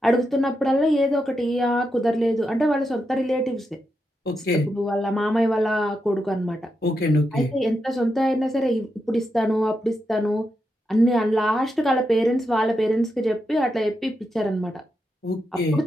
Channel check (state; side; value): normal; both; correlation 0.85